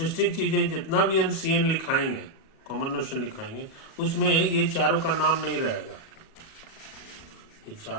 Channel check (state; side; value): late; right; 37 ms